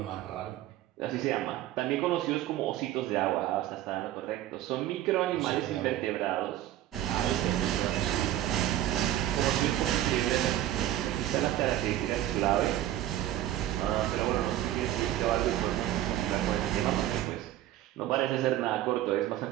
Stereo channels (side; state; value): left; quieter; 13.3 dB